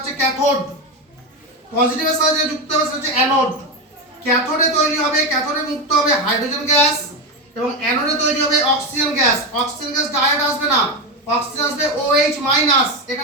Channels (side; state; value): both; normal; correlation 0.14